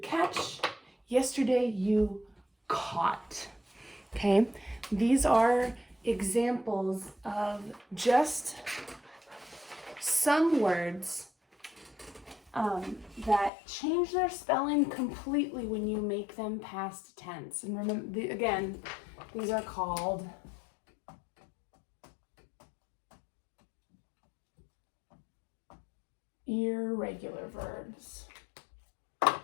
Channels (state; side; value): drops out; right; at 13.5 s